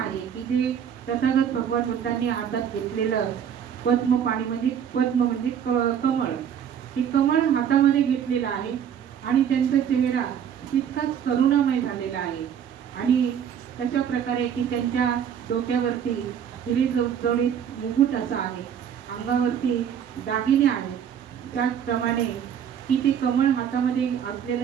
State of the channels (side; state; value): left; quieter; 8.6 dB